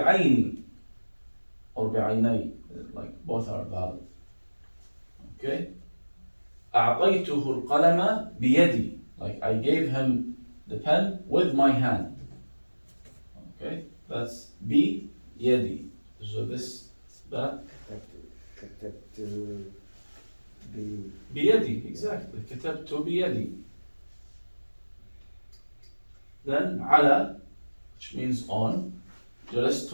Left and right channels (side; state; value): both; inverted; correlation -1.00